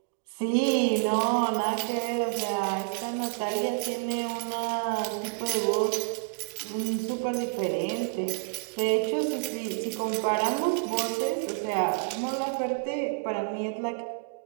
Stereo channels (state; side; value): silent; left; digital silence